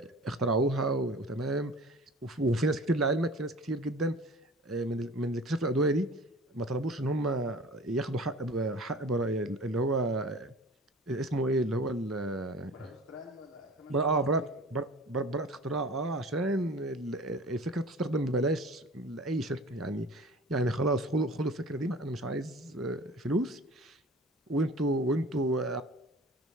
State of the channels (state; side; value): normal; both; correlation 0.42